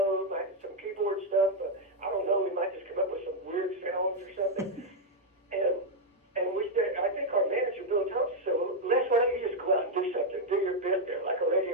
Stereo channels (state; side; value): normal; both; correlation 0.00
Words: might be some keyboard stuff, but I don't know. We might just come up with some weird sounds or something. And we said, I think our manager, Bill Thompson, said, well, Les, why don't you just go out and do something? Do your bit there, like a